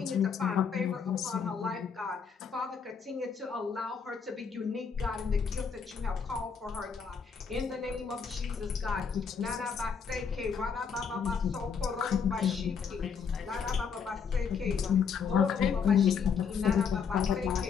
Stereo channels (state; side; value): quieter; right; 6.3 dB